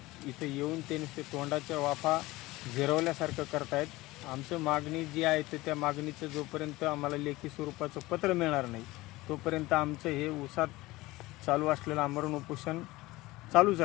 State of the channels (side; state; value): right; quieter; 19.7 dB